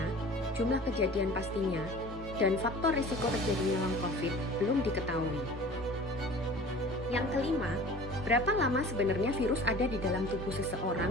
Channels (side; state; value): both; normal; correlation 0.43